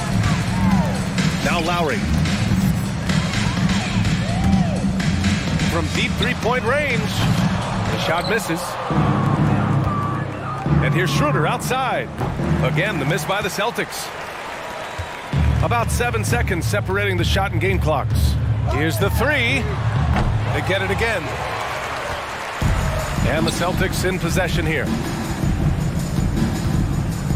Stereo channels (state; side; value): identical; both; correlation 1.00